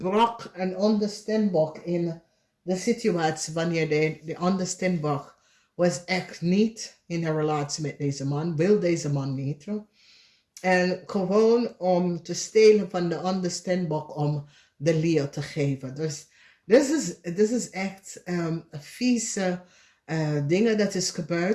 een ander Steenbok in de situatie wanneer de andere Steenbok was echt niet in een relatie met deze man, wil deze man niet. En gewoon om te stelen van de andere Steenbok om de Leo te geven. Dus dit is echt vieze dingen dat is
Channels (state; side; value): identical; both; correlation 1.00